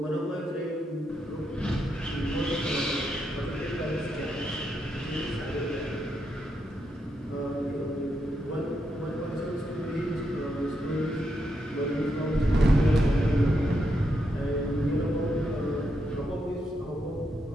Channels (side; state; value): both; normal; correlation 0.82